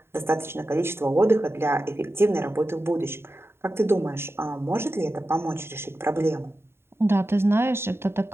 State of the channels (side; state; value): left; late; 0.12 ms